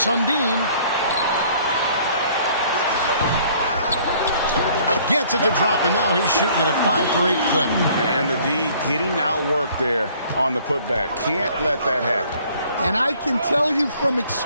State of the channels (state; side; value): inverted; both; correlation -0.57